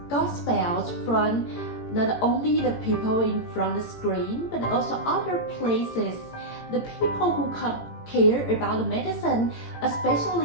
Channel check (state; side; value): late; right; 18 ms